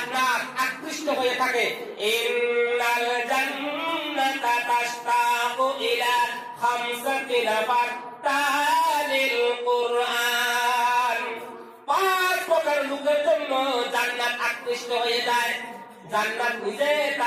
আকৃষ্ট হয়ে থাকে। ইন্নাল জান্নাতা তাশতাকু ইলা 5 নাফার তালিল কুরআন। 5 প্রকার লোকের জন্য জান্নাত আকৃষ্ট হয়ে যায়। জান্নাত নিজে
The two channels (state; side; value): identical; both; correlation 1.00